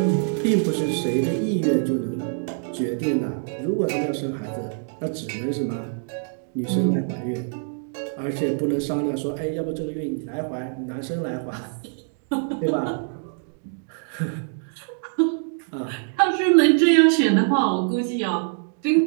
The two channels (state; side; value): silent; left; 62 dB below the other